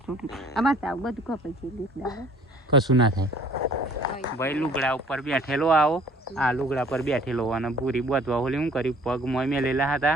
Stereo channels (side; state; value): both; normal; correlation 0.54